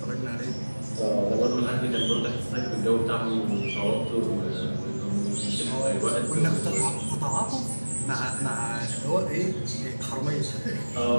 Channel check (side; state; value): both; inverted; correlation -1.00